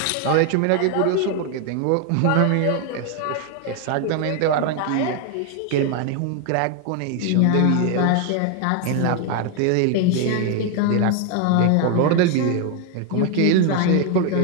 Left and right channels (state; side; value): different; both; correlation 0.01